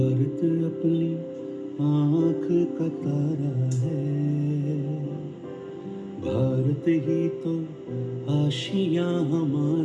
अपनी आँख का तारा है, भारत ही तो आशियाँ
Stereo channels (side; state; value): both; identical; correlation 1.00